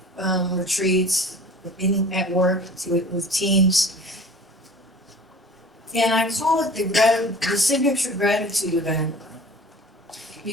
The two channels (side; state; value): both; normal; correlation 0.43